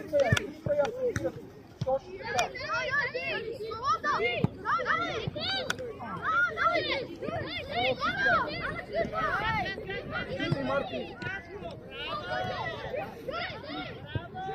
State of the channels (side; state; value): both; identical; correlation 1.00